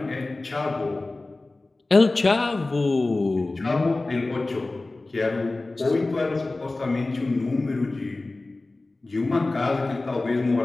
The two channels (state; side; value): quieter; right; 3.1 dB